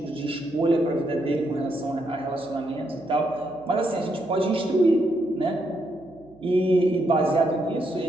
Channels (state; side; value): noise; right; hum, 27 dB below the sound